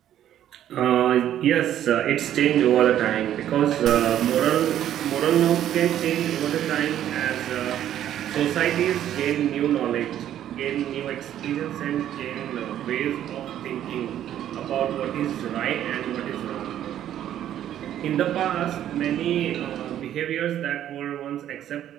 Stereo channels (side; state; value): left; quieter; 11.3 dB